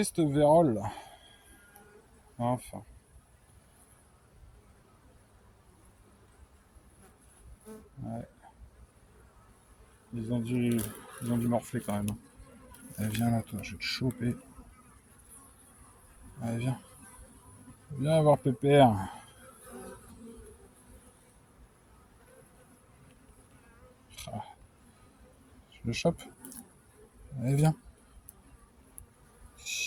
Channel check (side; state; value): both; identical; correlation 1.00